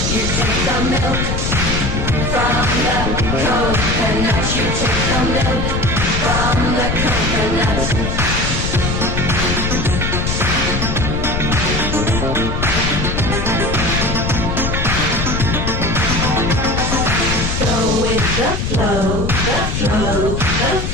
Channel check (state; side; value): noise; left; rumble, 1 dB below the sound